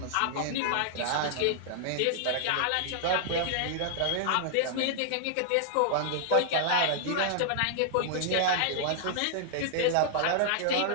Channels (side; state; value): both; different; correlation -0.01